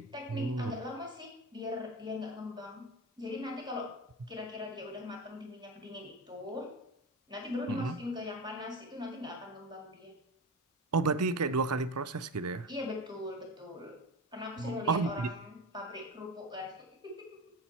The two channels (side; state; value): both; normal; correlation 0.25